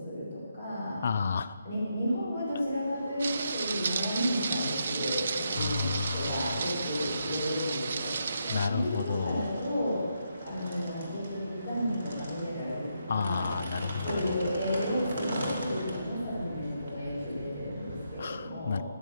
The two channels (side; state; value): both; inverted; correlation -0.80